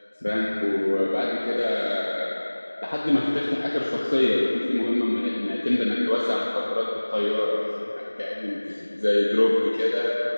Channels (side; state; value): both; inverted; correlation -1.00